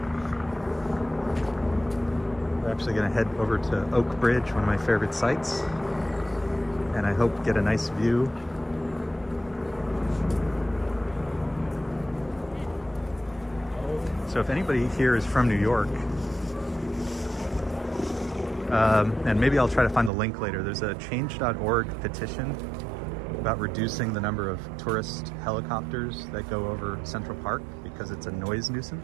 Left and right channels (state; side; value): drops out; left; at 20.1 s